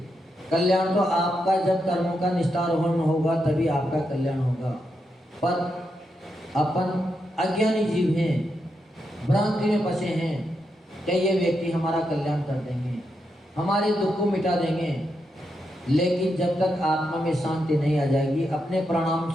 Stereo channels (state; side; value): normal; both; correlation 0.84